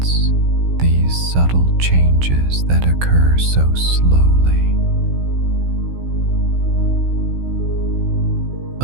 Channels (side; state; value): left; late; 16 ms